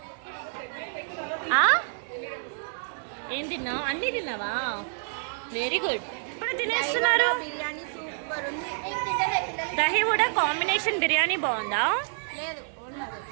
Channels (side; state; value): left; silent; digital silence